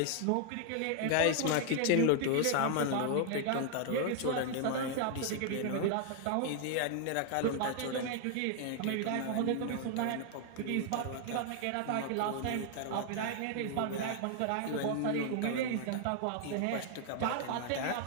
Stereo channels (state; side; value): different; both; correlation 0.00